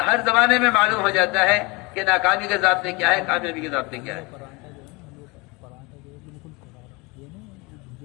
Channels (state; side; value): quieter; right; 26.2 dB